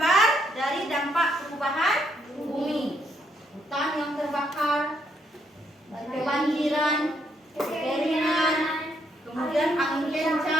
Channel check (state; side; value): normal; both; correlation 0.74